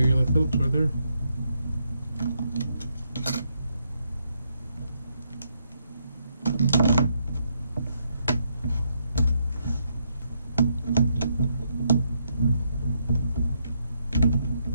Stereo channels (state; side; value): inverted; both; correlation -0.77